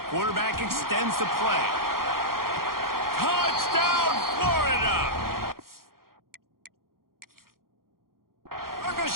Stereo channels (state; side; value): late; left; 0.92 ms